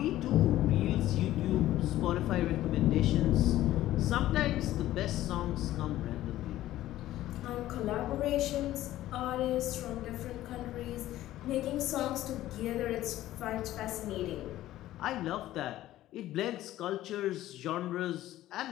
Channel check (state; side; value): quieter; right; 14.5 dB